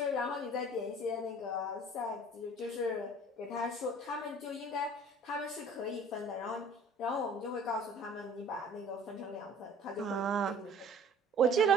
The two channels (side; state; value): both; normal; correlation 0.49